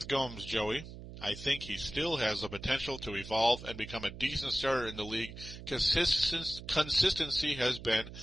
Gomes, Joey. I think he still has the potential to evolve and become a decent starter in the league. Consistency has been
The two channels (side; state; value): right; noise; hum, 13 dB below the sound